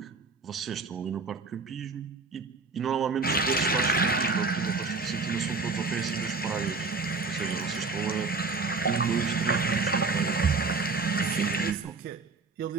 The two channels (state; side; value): quieter; left; 4.0 dB